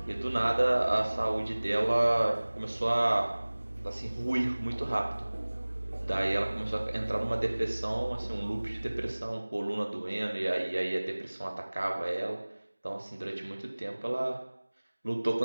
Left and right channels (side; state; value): both; inverted; correlation -1.00